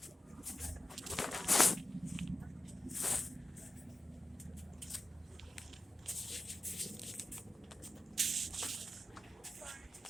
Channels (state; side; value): normal; both; correlation 0.93